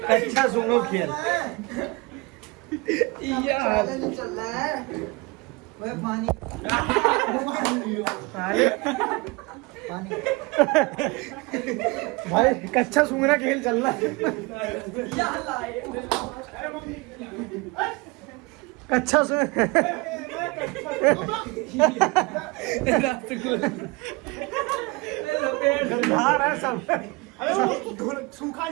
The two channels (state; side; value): quieter; left; 25.6 dB